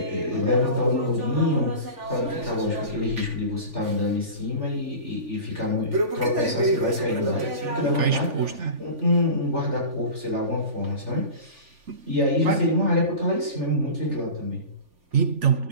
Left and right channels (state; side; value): late; left; 3.4 ms